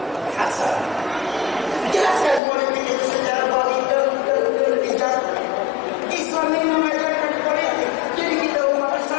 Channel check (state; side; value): drops out; right; at 2.4 s